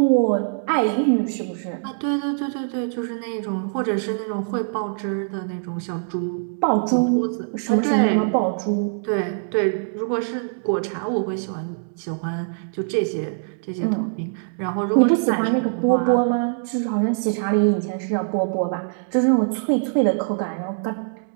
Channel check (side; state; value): left; silent; 63 dB below the other